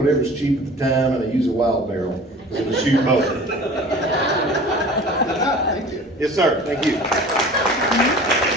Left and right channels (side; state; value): both; normal; correlation 0.42